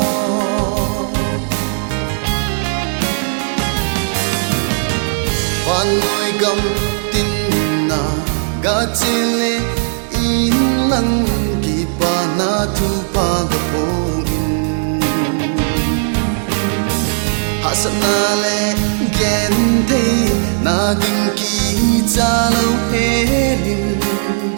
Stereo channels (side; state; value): left; silent; 69 dB below the other